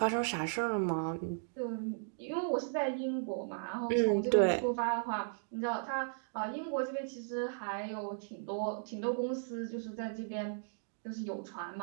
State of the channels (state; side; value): silent; left; digital silence